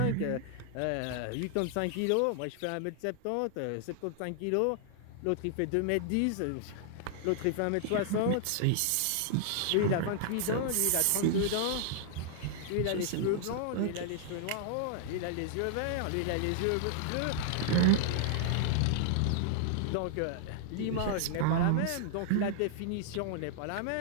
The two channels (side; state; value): both; different; correlation -0.01